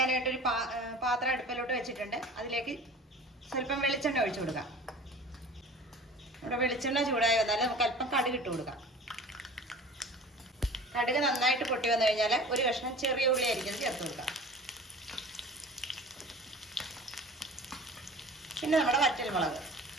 പാത്രം അടുപ്പിലോട്ട് വെച്ചിട്ടുണ്ട്. അതിലേക്ക് സ്വല്പം വെളിച്ചെണ്ണ ഒഴിച്ചു കൊടുക്കാം. നമ്മുടെ വെളിച്ചെണ്ണ ചൂടായി വന്നാൽ നമുക്ക് അല്പം കടുക് ഇട്ട് കൊടുക്കാം. കടുക് നന്നായിട്ട് പൊട്ടി വന്നു കഴിഞ്ഞാൽ ഒരു കഷ്ണം ചെറിയ ഉള്ളി ആയിരിക്കും ചേർത്ത് കൊടുക്കാം. പിന്നെ നമ്മുടെ വറ്റൽമുളക്,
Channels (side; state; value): both; normal; correlation 0.41